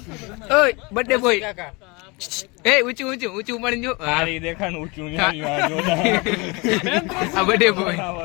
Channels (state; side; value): quieter; right; 27.1 dB